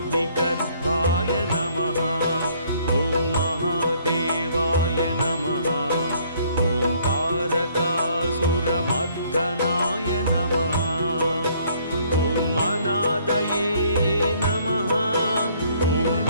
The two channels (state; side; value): inverted; both; correlation -0.63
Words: नमः। ॐ महादेवाय नमः। ॐ तारकासुरमर्दनाय नमः। ॐ अनादये नमः। ॐ